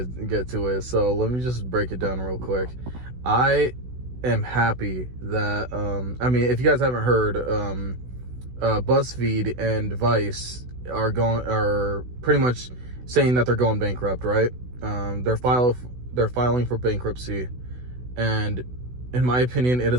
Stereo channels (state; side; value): late; left; 16 ms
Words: to it. So let me just break it down real quick. I am happy that if you guys haven't heard, BuzzFeed and Vice are pretty much saying that they're going bankrupt, right? They're filing for bankruptcy, and in my opinion, it